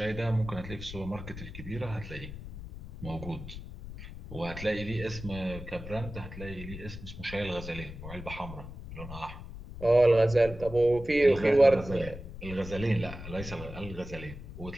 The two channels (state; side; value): noise; left; rumble, 11 dB below the sound